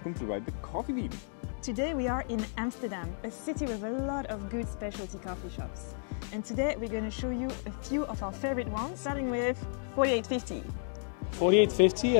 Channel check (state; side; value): silent; right; digital silence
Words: to Ride the Coffee Bean. Today we are in Amsterdam, a city with a lot of good specialty coffee shops. And today we're going to show you a few of our favorite ones, starting with 4850. 4850